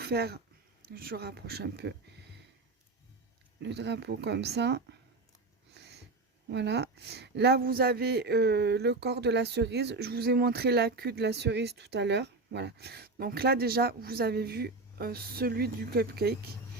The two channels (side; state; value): left; quieter; 3.4 dB